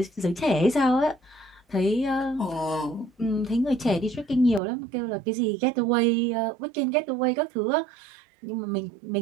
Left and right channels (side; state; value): left; drops out; at 4.6 s